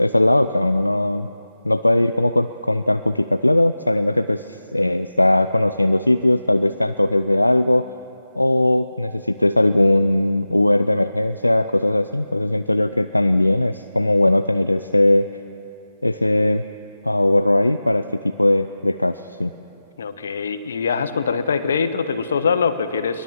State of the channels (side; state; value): both; inverted; correlation -0.96